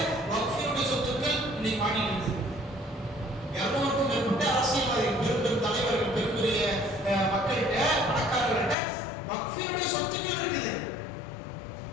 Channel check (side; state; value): right; drops out; at 8.8 s